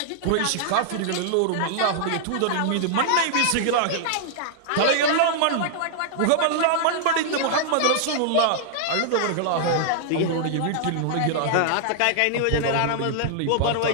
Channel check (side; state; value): both; different; correlation -0.01